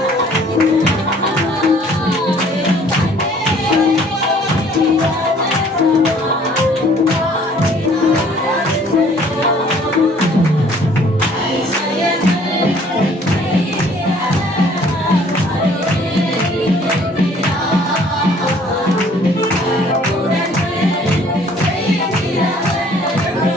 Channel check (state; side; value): normal; both; correlation 0.57